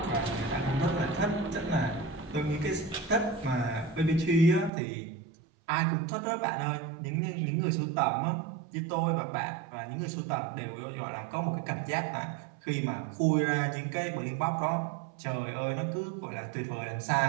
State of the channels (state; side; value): drops out; left; at 4.7 s